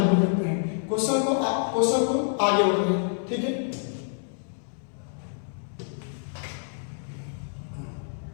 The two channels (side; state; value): right; silent; 60 dB below the other